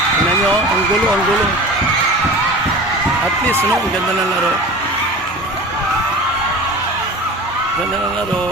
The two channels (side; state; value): both; normal; correlation 0.36